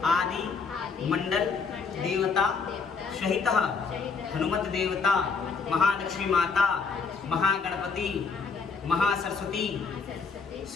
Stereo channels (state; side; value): quieter; right; 5.1 dB